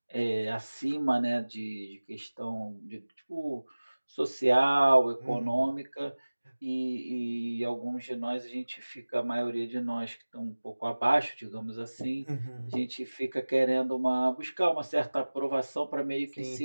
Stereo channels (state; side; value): inverted; both; correlation -1.00